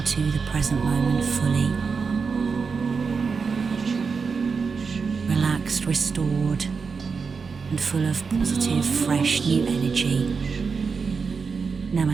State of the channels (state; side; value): quieter; left; 5.2 dB